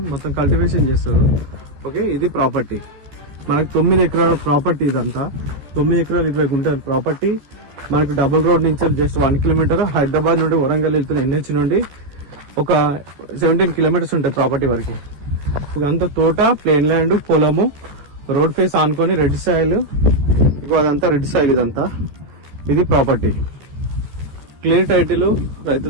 మొత్తం కల్టివేషన్ చేస్తారు. ఓకే, ఇది ప్రాపర్టీ మనకి 9 ఎకరాల ప్రాపర్టీ ఇదంతా. 9 ఎకరాలు 20 గుంటల ప్రాపర్టీ మనకి. డబుల్ రోడ్ నుంచి జస్ట్ 1 కిలోమీటర్. హైదరాబాద్ నుండి వరంగల్ వెళ్తున్న NH నుండి ఒక 17 కిలోమీటర్స్ ఉంటాయి ప్రాపర్టీ వరకు. ఇదంతా తోట, ప్లేన్ ల్యాండ్, పొలము, రోడ్ ఫేస్ ఆనుకొని రెడ్ సాయిల్. ఇక అదంతా రెడ్ సాయిల్ ఇదంతా. ఇది ప్రాపర్టీ. క్లియర్ టైటిల్ రైతు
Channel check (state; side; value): late; left; 14 ms